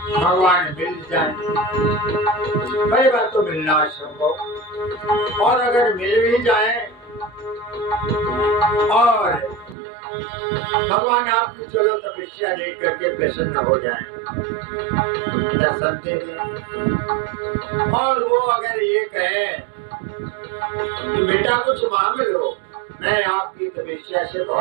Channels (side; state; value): left; drops out; at 9.8 s